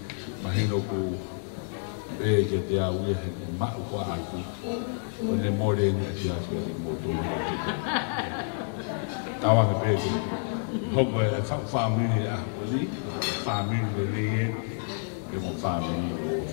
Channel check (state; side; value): silent; right; digital silence